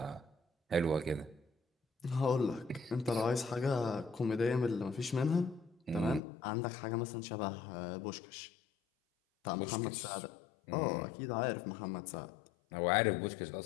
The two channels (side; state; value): right; drops out; at 6.2 s